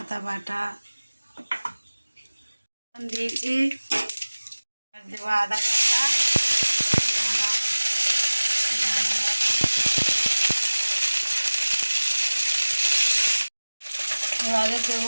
বাটা দিয়েছি। দেবো আদা বাটা, এবারে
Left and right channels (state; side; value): inverted; both; correlation -1.00